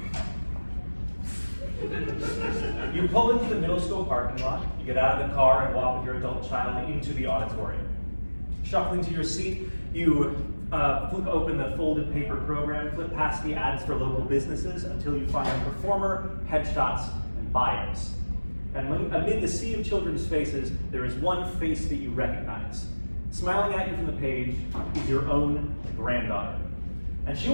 You pull into the middle school parking lot, you get out of the car and walk with your adult child into the auditorium. Shuffling to your seat, you flip open the folded paper program, flip past the ads for local businesses until you find a performer, headshots, and bios. And amid the sea of children's faces, there is one face that you recognize. Smiling at you from the page is your own granddaughter. And she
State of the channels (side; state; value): both; inverted; correlation -1.00